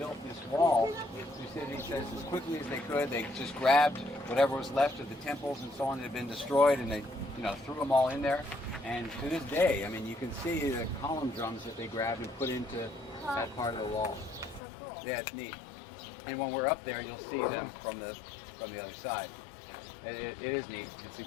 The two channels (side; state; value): right; drops out; at 14.6 s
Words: this wall. Thucydides says as quickly as they could, they just grabbed whatever was left of the temples and so on that had been destroyed, and they, threw them all in there. And to this day, I mean, you can see the column drums that they grabbed and put into that part of the wall. Yeah, it's neat. And when we're up there, you'll see them from the other side. It is neat. It's